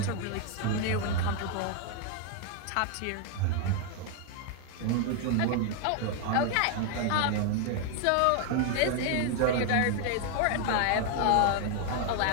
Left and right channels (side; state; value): both; different; correlation 0.00